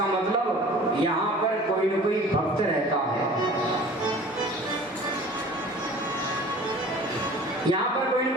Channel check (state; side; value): normal; both; correlation 0.45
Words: मतलब यहाँ पर कोई न कोई भक्त रहता है, यहाँ पर कोई न